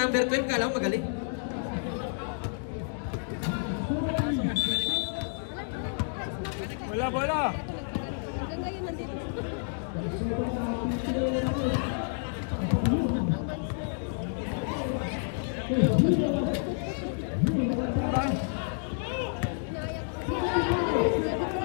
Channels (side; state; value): right; silent; digital silence